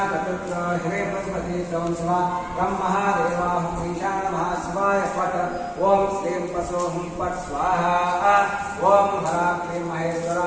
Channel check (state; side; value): identical; both; correlation 1.00